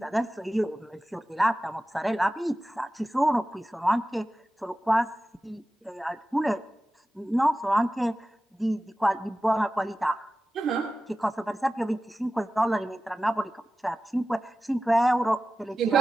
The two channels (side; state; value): both; normal; correlation 0.95